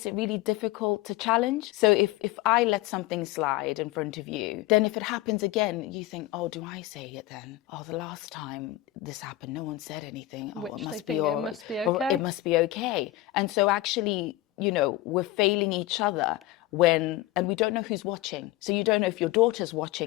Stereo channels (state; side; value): quieter; right; 16.1 dB